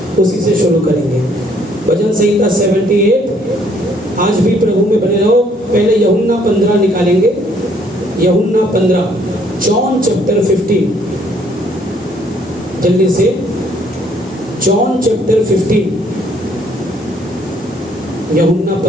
उसी से शुरू करेंगे। भजन संहिता 78। आज भी प्रभु में बने रहो। पहले यूहन्ना 15 निकालेंगे। यूहन्ना 15, जॉन चैप्टर 15, जल्दी से। जॉन चैप्टर 15, यूहन्ना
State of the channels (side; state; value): both; normal; correlation 0.65